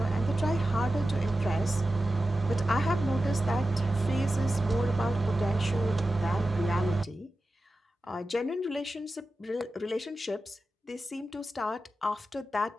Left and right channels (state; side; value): normal; both; correlation 0.93